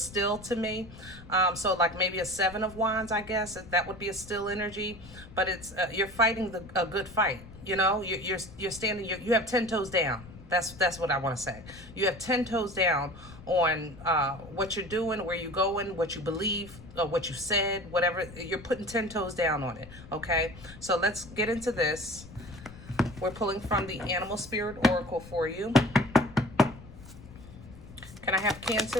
still to me. So like maybe a 7 of Wands, I guess, that would be a still energy, but it's you're fighting a good fight, you know. You're standing, you have 10 toes down. That's what I want to say. You have 10 toes down on what you're doing, where you're going, what you believe, what you said, whatever. You're putting 10 toes down on it, okay? So let's get into this. We're pulling from the Animal Spirit Oracle for you. Can I have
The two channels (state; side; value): noise; left; rumble, 17 dB below the sound